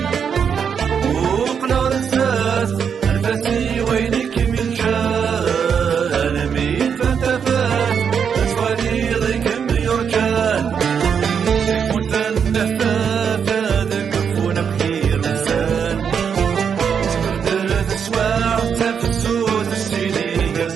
وقنا رساس الفاسي وينك من جال ميت فانتفات أتواني ضيق بيرجال كنت النفاف هذا كفونا بخير لسان سكرت الأسواع تفسود السيدي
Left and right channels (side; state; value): left; quieter; 7.1 dB